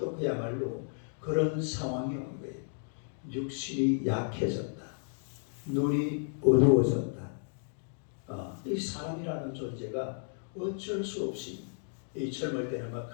그야말로 그런 상황이 온 거예요. 육신이 약해졌다. 눈이 어두워졌다. 이 사람이라는 존재가 어쩔 수 없이 이 젊을 때는 막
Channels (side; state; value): right; silent; digital silence